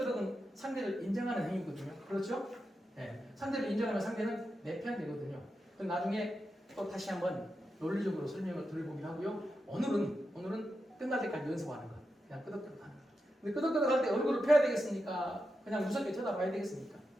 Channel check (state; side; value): normal; both; correlation 0.88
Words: 상대를 인정하는 행위거든요. 그렇죠? 네. 상대를 인정하면 상대는 내 편 되거든요. 그럼 나중에 또 다시 한번 논리적으로 설명을 드려보기로 하고요. 오늘은 끝날 때까지 연습하는 거. 그냥 끄덕끄덕 하는 거. 근데 끄덕끄덕 할 때 얼굴을 펴야 되겠습니까? 그냥 무섭게 쳐다봐야 되겠습니까?